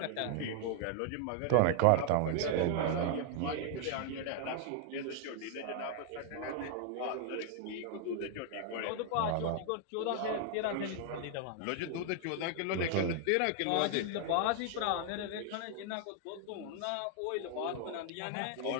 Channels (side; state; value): both; different; correlation 0.00